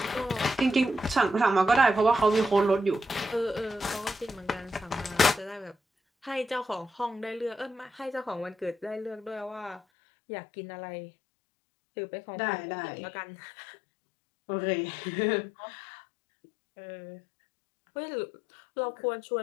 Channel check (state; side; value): drops out; right; at 9.8 s